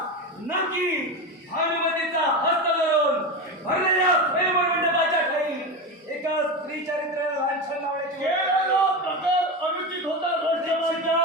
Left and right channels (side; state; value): both; normal; correlation 0.20